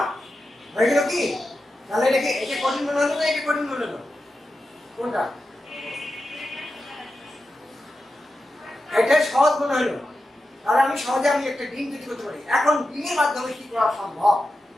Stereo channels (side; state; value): both; normal; correlation 0.91